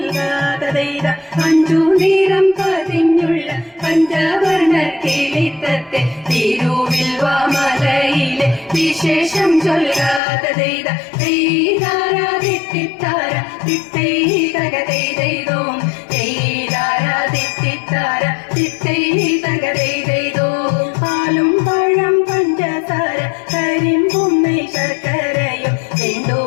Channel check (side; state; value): right; drops out; at 10.2 s